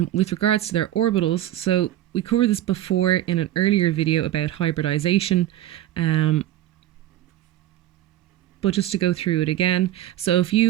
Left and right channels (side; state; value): left; quieter; 13.4 dB